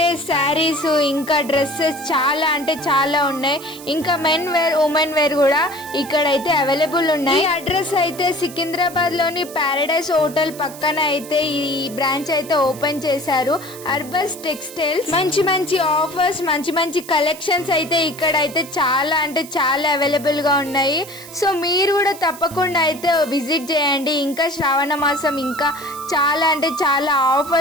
శారీస్ ఇంకా డ్రెస్సెస్ చాలా అంటే చాలా ఉన్నాయి. ఇంకా మెన్ వేర్, ఉమెన్ వేర్ కూడా ఇక్కడైతే అవైలబుల్ ఉన్నాయి. ఈ అడ్రస్ అయితే సికింద్రాబాద్ లోని పారడైస్ హోటల్ పక్కన అయితే ఈ బ్రాంచ్ అయితే ఓపెన్ చేశారు. అర్బస్ టెక్స్టైల్స్. మంచి మంచి ఆఫర్స్, మంచి మంచి కలెక్షన్స్ అయితే ఇక్కడ అయితే చాలా అంటే చాలా అవైలబుల్ గా ఉన్నాయి. సో మీరు కూడా తప్పకుండా అయితే విజిట్ చేయండి. ఇంకా శ్రావణ మాసం ఇంకా చాలా అంటే చాలా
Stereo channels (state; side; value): noise; right; hiss, 16 dB below the sound